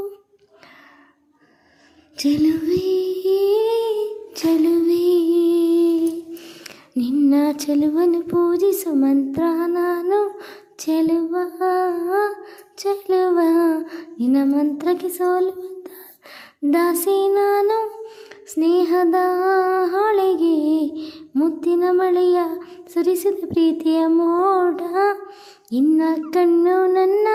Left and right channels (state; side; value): identical; both; correlation 1.00